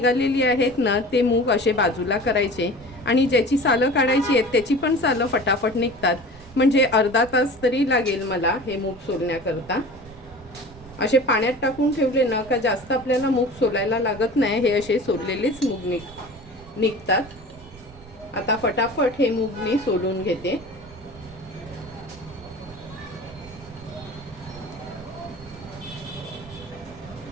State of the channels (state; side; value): noise; right; rumble, 20 dB below the sound